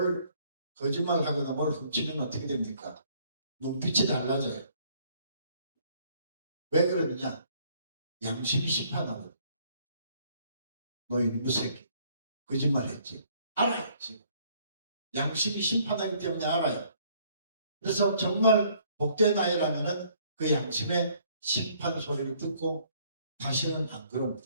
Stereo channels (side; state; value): both; inverted; correlation -0.63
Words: 거짓말하거나 뭘 훔치면 어떻게 됩니까? 눈빛이 달라져요. 왜 그러느냐? 양심이 심판하거든. 너 이놈의 새끼 거짓말했지. 알아요. 지금. 양심이 심판하기 때문에 알아요. 그래서 정말 복된 아이라면은 그 양심의 심판 소리를 듣고 다시는 안 그럽니다.